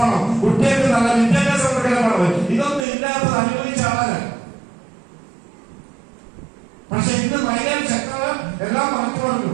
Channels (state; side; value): drops out; left; at 2.9 s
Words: കുട്ടികൾക്ക് നല്ല വിദ്യാഭ്യാസം കൊടുക്കണം. ഇതൊന്നും ഇല്ലാത്തത് അനുഭവിച്ച ആളാണ്. പക്ഷെ ഇന്ന് മൈലാൻ ശക്തത എല്ലാം മാറ്റി പറഞ്ഞു.